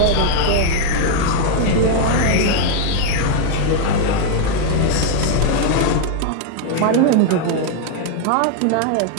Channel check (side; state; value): both; different; correlation 0.00